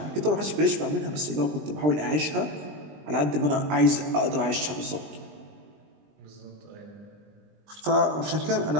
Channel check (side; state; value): left; late; 20 ms